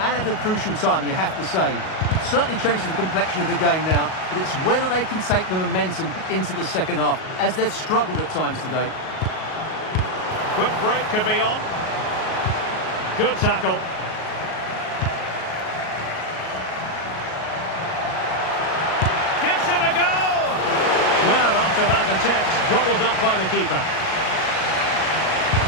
at a crucial time, you have to say. Certainly changes the complexion of the game now, but it's whether they can take the momentum into the second half, as they've struggled at times today. Quick break could be on. Good tackle. Gives it a go! Well, after that attempt, gobbled up by the keeper.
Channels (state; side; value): late; right; 38 ms